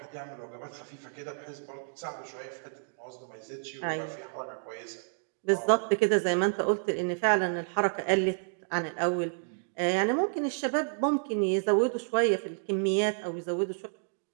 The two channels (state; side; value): silent; left; digital silence